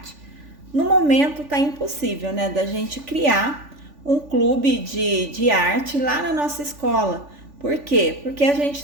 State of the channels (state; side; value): late; left; 3.5 ms